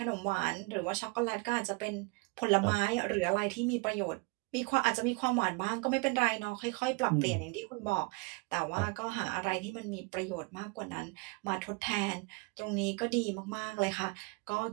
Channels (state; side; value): quieter; left; 29.1 dB